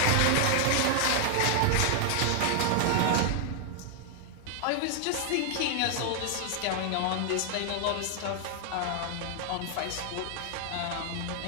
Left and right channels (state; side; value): different; both; correlation 0.00